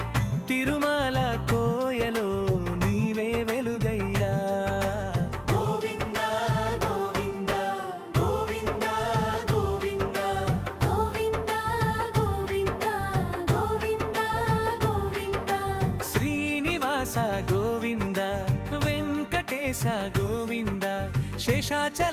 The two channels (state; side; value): identical; both; correlation 1.00